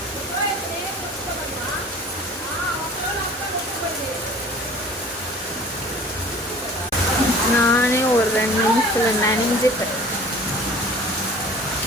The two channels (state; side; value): normal; both; correlation 0.45